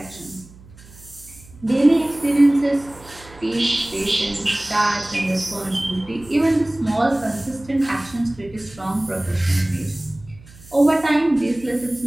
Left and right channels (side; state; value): right; noise; hum, 22 dB below the sound